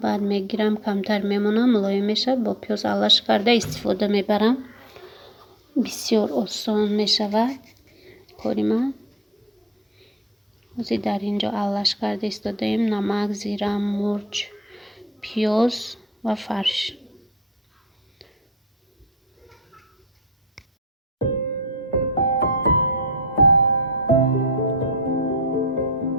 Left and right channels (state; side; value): normal; both; correlation 0.50